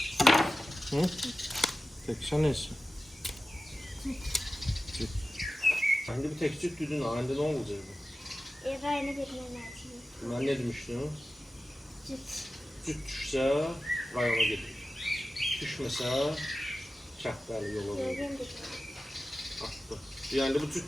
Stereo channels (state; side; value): normal; both; correlation 0.94